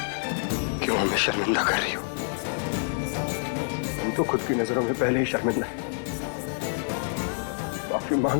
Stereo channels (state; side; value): silent; right; 57 dB below the other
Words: क्यों हमें शर्मिंदा कर रही हो? हम तो खुद की नजरों में पहले ही शर्मिंदा हैं। माफी मांग